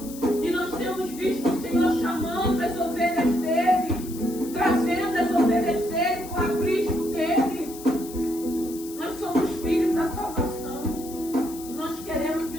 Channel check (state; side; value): noise; left; hiss, 15 dB below the sound